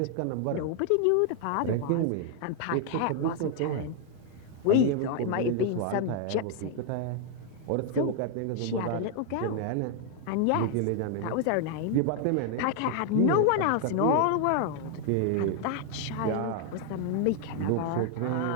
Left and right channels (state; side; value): different; both; correlation 0.00